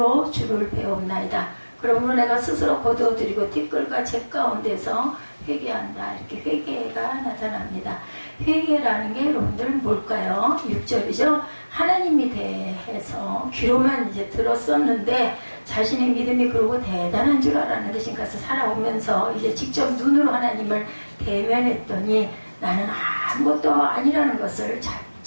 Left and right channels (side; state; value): both; inverted; correlation -1.00